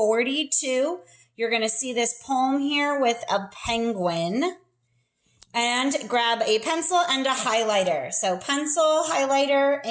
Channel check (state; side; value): identical; both; correlation 1.00